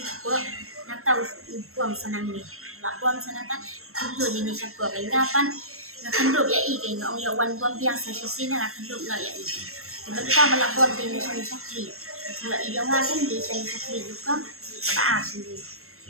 buat nak tahu buang senang ni buang senang kan dulu di Indonesia gua kapan nak kenduk ya i orang ya wan buang biasa sisi nak kenduk nak ya i sebentar malah buang di Indonesia sakli kalau idong kan di Indonesia sakli juga apa sih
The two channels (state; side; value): late; left; 0.62 ms